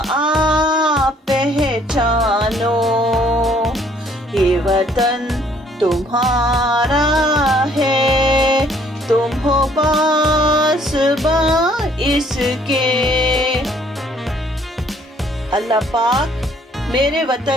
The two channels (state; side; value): normal; both; correlation 0.62